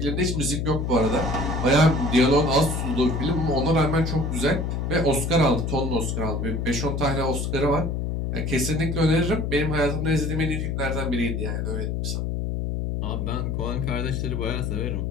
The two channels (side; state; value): left; noise; hum, 1 dB below the sound